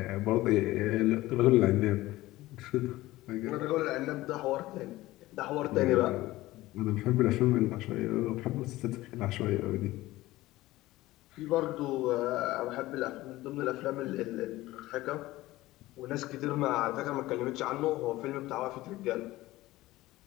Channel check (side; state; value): right; quieter; 17.6 dB